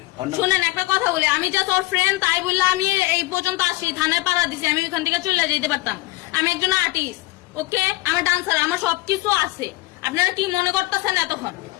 ওর নাম- শুনেন একটা কথা বলি, আমি জাস্ট ওর ফ্রেন্ড, তাই বললে আমি এই পর্যন্ত আসি, থানায় পাড়া দিছি, আমি ওইখান থেকে চলে যেতে পারতাম। আমি একজন আর্টিস্ট, ওকে, আমার ডান্সার, আমার সবকিছু আছে। আপনারা কি মনে করতেছেন এতক্ষণ?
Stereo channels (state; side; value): quieter; right; 20.3 dB